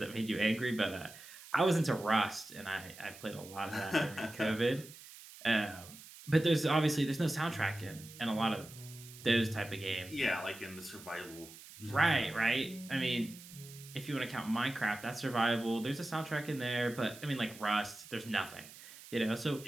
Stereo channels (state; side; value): noise; right; hiss, 17 dB below the sound